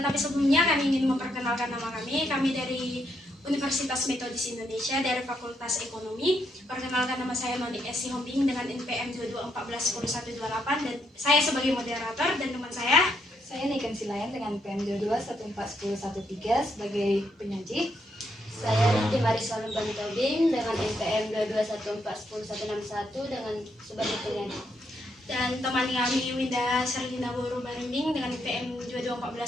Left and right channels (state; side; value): normal; both; correlation 0.77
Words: sebelumnya kami ingin memperkenalkan nama kami. Kami dari Universitas Metodis Indonesia dari Fakultas Ekonomi. Perkenalkan, nama saya Noni S. Sihombing dengan NPM 22141128 dan saya sebagai moderator, dan teman saya Niken Silayan dengan NPM 22141113 sebagai penyaji. Saya Niti Marisol Tobing dengan NPM 22141161 dengan sebagai penyaji. Dan teman kami Winda Serlina Boru Barimbing dengan NPM